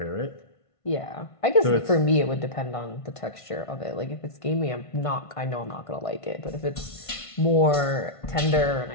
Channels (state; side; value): late; right; 1.5 ms